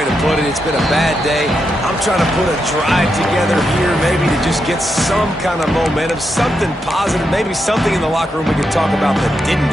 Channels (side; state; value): both; normal; correlation 0.84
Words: to put it. It's been a bad day. I'm trying to put a drive together here, maybe to just get some kind of momentum, something positive, maybe something in the locker room we can talk about that didn't